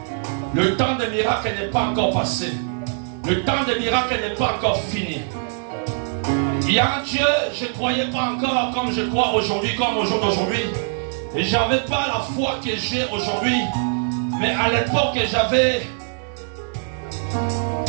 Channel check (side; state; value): left; silent; digital silence